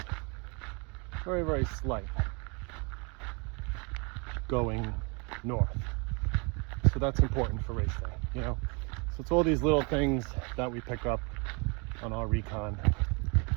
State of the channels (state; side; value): quieter; left; 31.5 dB